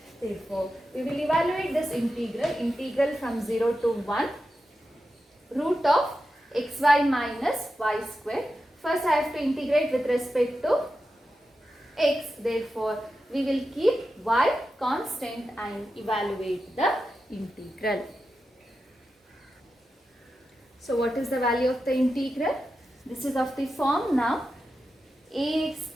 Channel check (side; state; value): both; normal; correlation 0.90